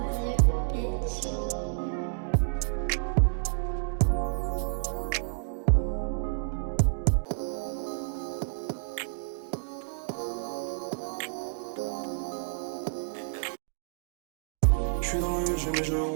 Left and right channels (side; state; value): left; silent; digital silence